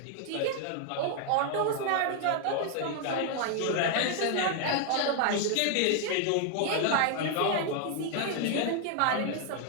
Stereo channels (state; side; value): different; both; correlation 0.00